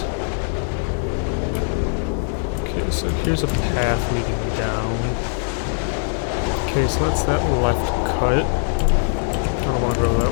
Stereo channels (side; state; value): right; silent; digital silence